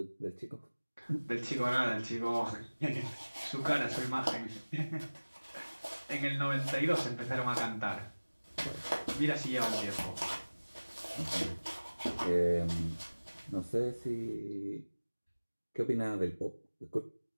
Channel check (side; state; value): both; inverted; correlation -1.00